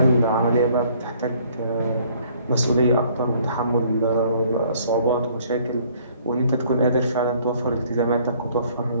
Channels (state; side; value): inverted; both; correlation -0.60